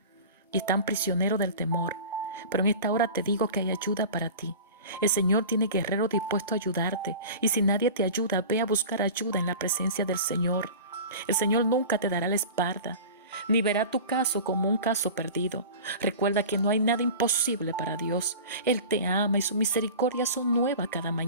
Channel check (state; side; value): inverted; both; correlation -0.36